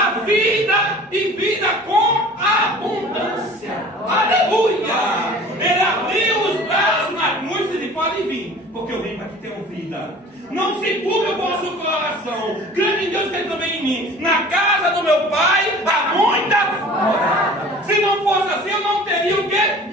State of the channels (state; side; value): normal; both; correlation 0.44